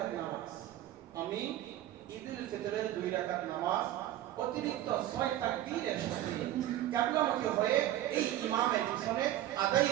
নামাজ, আমি ঈদুল ফিতরের 2 রাকাত নামাজ অতিরিক্ত 6 তাকবীরের সাথে কিবলামুখী হয়ে এই ইমামের পিছনে আদায়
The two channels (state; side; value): quieter; left; 13.3 dB